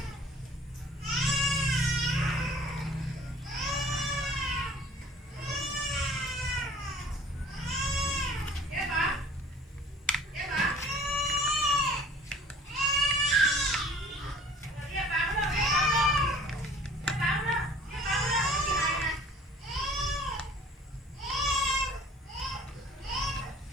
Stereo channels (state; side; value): normal; both; correlation 0.50